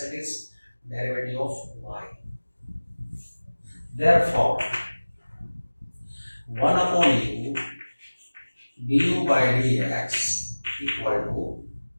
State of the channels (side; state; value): both; inverted; correlation -1.00